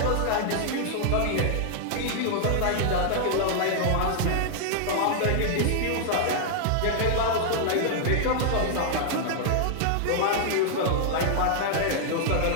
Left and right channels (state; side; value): different; both; correlation -0.01